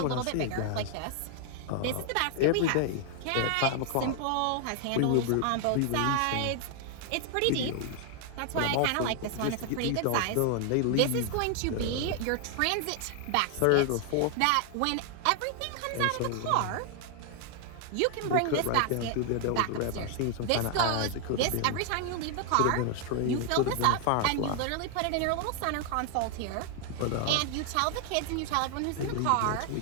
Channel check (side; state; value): both; different; correlation 0.00